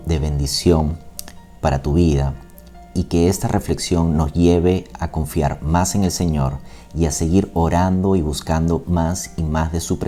de bendición para tu vida y que esta reflexión nos lleve a confiar más en el Señor y a seguir orando y buscando más y más de su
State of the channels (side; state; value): both; identical; correlation 1.00